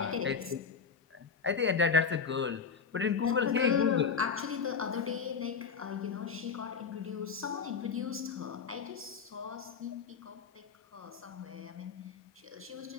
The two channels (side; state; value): right; quieter; 5.9 dB